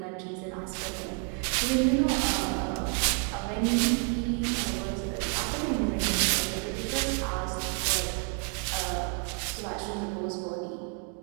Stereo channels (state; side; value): quieter; left; 38.8 dB